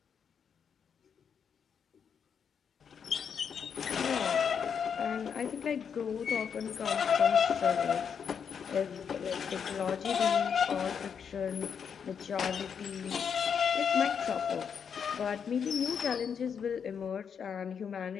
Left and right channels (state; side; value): quieter; right; 7.1 dB